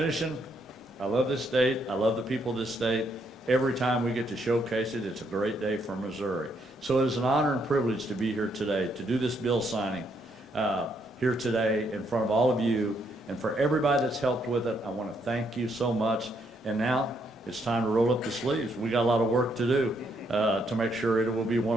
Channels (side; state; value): both; normal; correlation 0.74